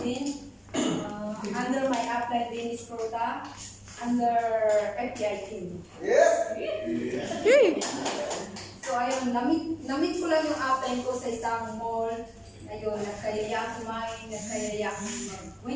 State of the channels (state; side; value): identical; both; correlation 1.00